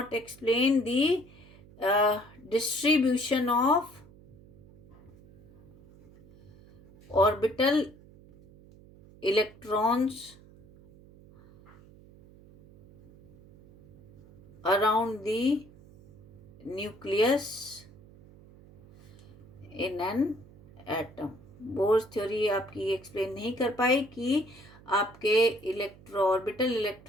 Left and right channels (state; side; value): noise; right; hum, 23 dB below the sound